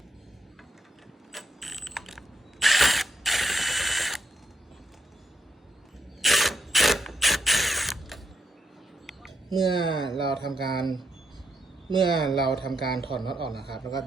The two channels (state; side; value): normal; both; correlation 0.81